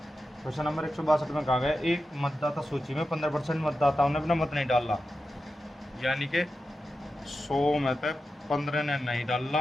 क्वेश्चन नंबर 162 में कहा गया, एक मतदाता सूची में 15% मतदाताओं ने अपना मत नहीं डाला, यानी कि 100 में से 15 ने नहीं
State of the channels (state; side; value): normal; both; correlation 0.91